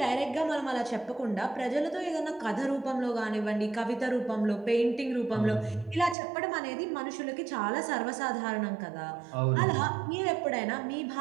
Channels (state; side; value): drops out; left; at 6.2 s